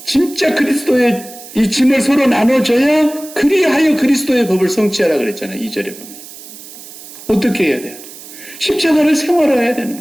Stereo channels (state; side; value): noise; right; hiss, 16 dB below the sound